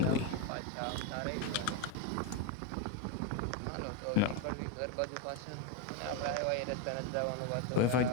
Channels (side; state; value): both; different; correlation 0.03